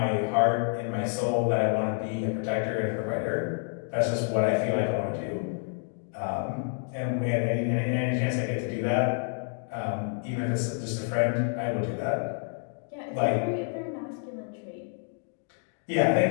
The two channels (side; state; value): right; silent; 59 dB below the other